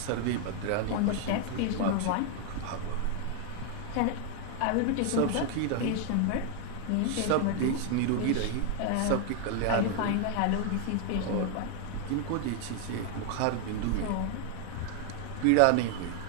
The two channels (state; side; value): different; both; correlation 0.00